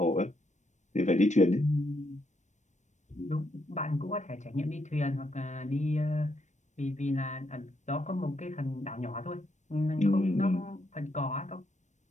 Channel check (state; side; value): late; right; 0.34 ms